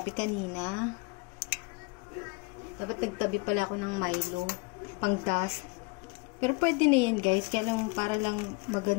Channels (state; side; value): quieter; right; 28.0 dB